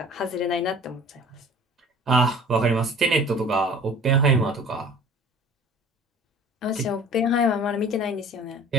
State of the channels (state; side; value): normal; both; correlation 0.45